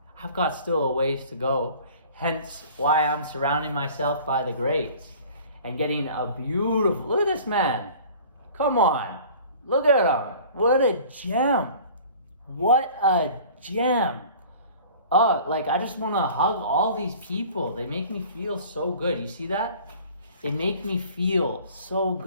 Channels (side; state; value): both; inverted; correlation -0.46